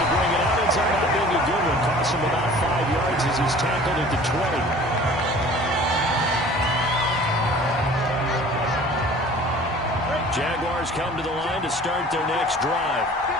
bring it out. It's not being a good one. Costs him about 5 yards as he's tackled at the 20. Jaguars come to the line to start their next drive.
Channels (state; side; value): normal; both; correlation 0.47